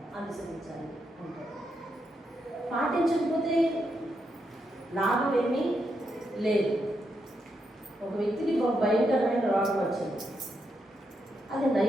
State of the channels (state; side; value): normal; both; correlation 0.82